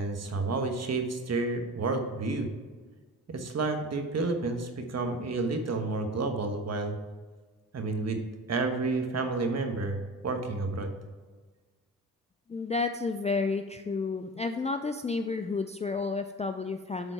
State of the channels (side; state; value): both; normal; correlation 0.33